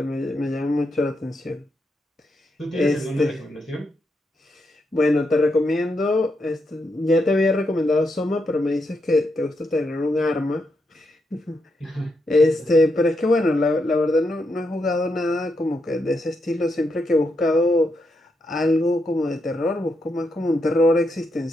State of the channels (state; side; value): normal; both; correlation 0.82